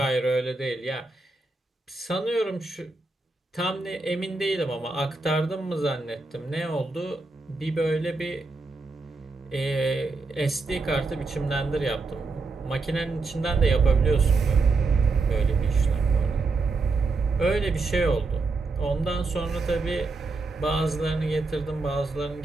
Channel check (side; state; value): left; quieter; 3.7 dB